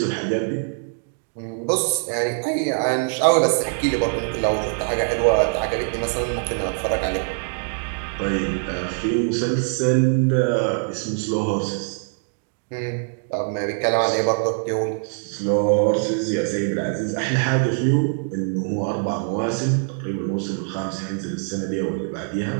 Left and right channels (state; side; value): silent; left; 63 dB below the other